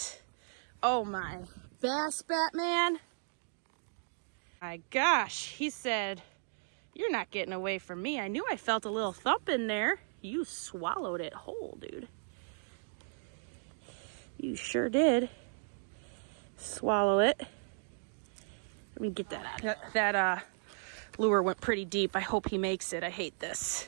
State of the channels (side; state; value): left; silent; digital silence